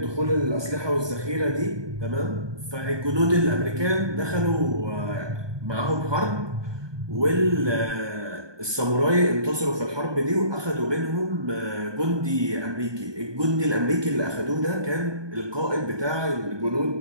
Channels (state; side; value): late; left; 1.2 ms